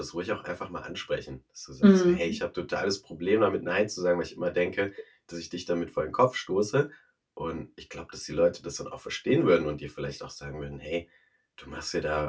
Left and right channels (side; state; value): both; identical; correlation 1.00